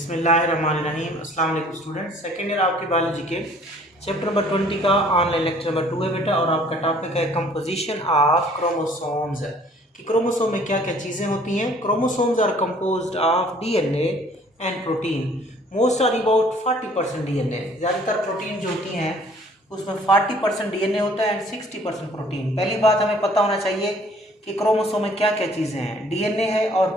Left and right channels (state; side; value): normal; both; correlation 0.56